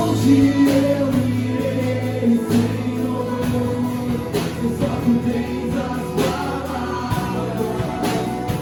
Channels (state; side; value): identical; both; correlation 1.00